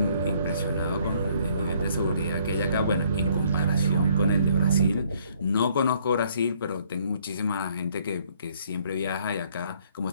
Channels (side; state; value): both; inverted; correlation -0.64